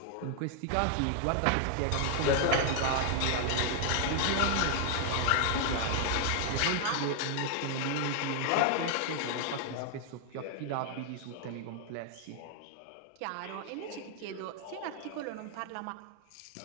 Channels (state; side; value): different; both; correlation 0.00